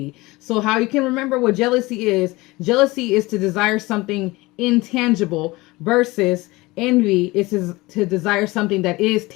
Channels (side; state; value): right; quieter; 21.5 dB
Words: So how you can remember what jealousy is to desire something intangible versus envy is to desire something that is